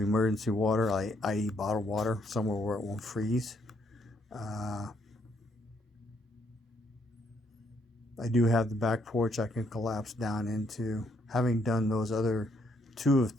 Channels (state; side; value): normal; both; correlation 0.71